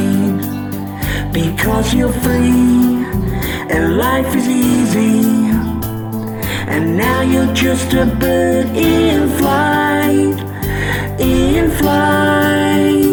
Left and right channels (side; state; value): both; identical; correlation 1.00